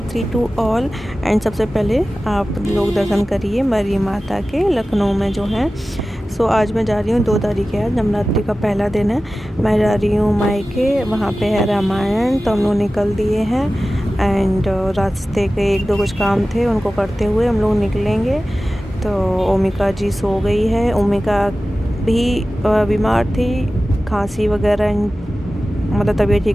to all. And सबसे पहले आप लोग दर्शन करिए मरी माता के लखनऊ में जो है। सो आज मैं जा रही हूँ, 2 तारीख है, नवरात्रि का पहला दिन है। मैं जा रही हूँ मायके, वहाँ पे है रामायण, तो हम लोग निकल दिए हैं। एंड रास्ते के 1-2 कुछ काम थे, उनको करते हुए हम लोग निकलेंगे। तो ओमिका जी सो गई है। ओमिका भी बीमार थी, खांसी वगैरह, मतलब तबीयत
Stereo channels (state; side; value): normal; both; correlation 0.95